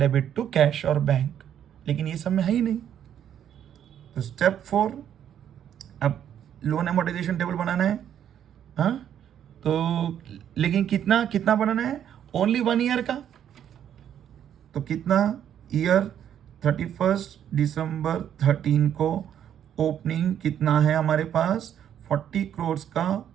to cash और बैंक। लेकिन ये सब में है ही नहीं। तो स्टेप 4, अब लोन एमोर्टाइजेशन टेबल बनाना है। हाँ, तो लेकिन कितना बनाना है, ओनली 1 ईयर का। तो कितना ईयर, 31 दिसंबर 13 को ओपनिंग कितना है हमारे पास, 40 करोड़ का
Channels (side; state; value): left; quieter; 9.7 dB